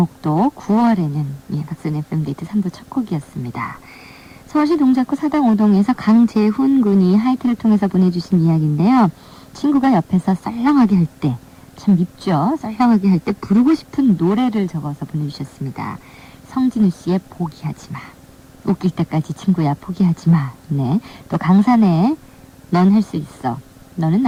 9월에는. 예, 박선의 FM데이트 3부 첫 곡이었습니다. 서울시 동작구 사당 5동에서 강재훈 군이 하이트를 통해서 보내주신 이야기인데요. 친구가 옆에서 썰렁하게 할 때, 참 밉죠? 썰렁하게 할 때 부르고 싶은 노래를 적어서 보내주셨습니다. 성진우 씨의 포기하지 마. 웃길 때까지 친구야 포기하지 마. 네. 또 강산의 넌 할 수 있어. 너는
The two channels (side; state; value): both; identical; correlation 1.00